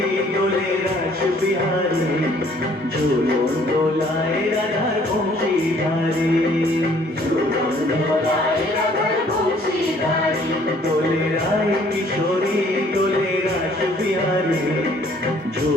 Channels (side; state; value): both; normal; correlation 0.60